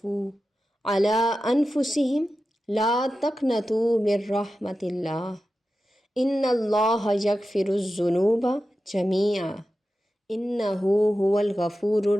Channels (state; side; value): normal; both; correlation 0.93